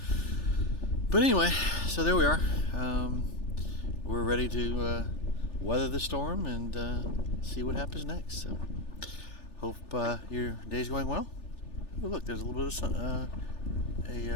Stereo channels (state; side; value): late; right; 3.4 ms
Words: But anyway, so there we are. We're ready to weather the storm and see what happens next. So, hope your day's going well. Oh, look, there's a little bit of sun,